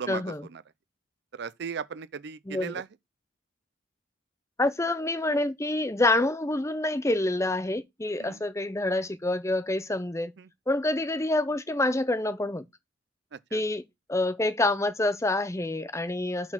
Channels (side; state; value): both; normal; correlation 0.63